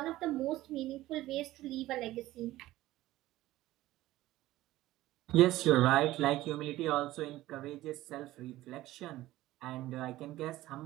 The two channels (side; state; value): left; quieter; 16.2 dB